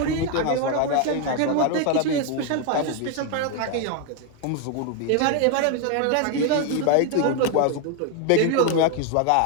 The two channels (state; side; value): different; both; correlation 0.01